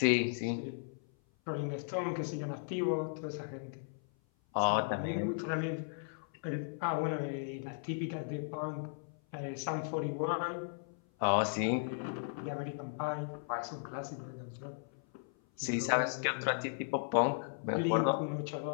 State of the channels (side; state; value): right; silent; 54 dB below the other